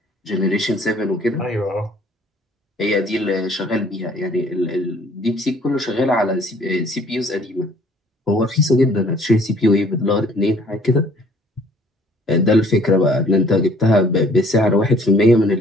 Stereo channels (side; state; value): both; normal; correlation 0.57